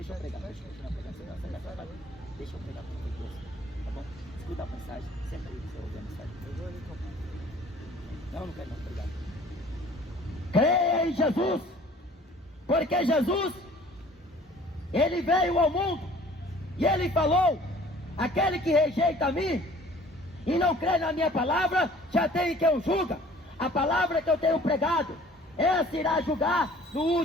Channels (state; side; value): normal; both; correlation 0.51